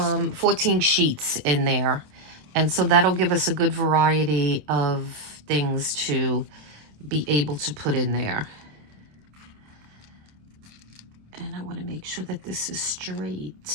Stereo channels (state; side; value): late; left; 27 ms